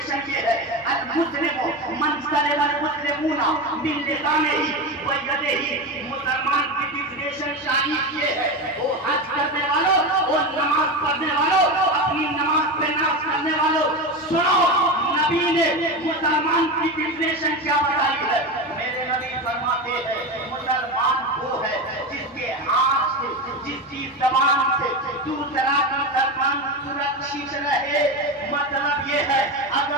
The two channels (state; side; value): normal; both; correlation 0.20